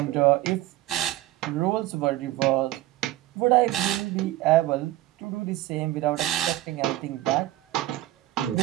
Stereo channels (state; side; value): quieter; left; 15.8 dB